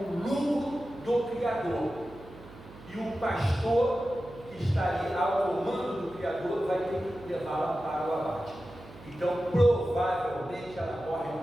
o lucro do criador. E o pastor que está ali ao comando do criador vai ter que levá-la para o abate. Então, provavelmente ela morre de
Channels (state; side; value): noise; right; hum, 19 dB below the sound